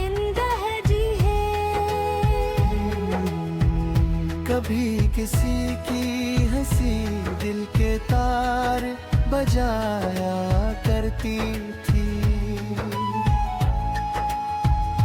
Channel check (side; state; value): both; identical; correlation 1.00